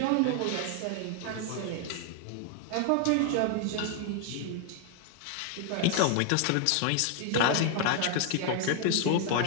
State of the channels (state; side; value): different; both; correlation 0.00